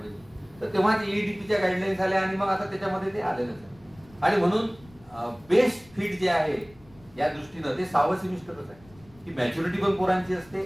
तर तेव्हा EDPच्या गाईडलाईन्स आल्या आणि मग आता त्याच्यामध्ये ते आलेलंच आहे. आणि म्हणून बेस्ट फिट जे आहे या दृष्टीनं ते 6वं सेमिस्टरच आहे की मॅच्युरिटी पण पोरांची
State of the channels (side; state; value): left; noise; rumble, 26 dB below the sound